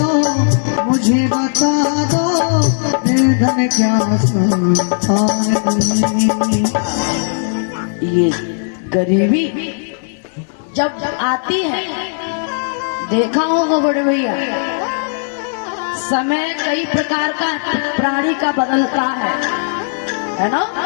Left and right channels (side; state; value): right; silent; digital silence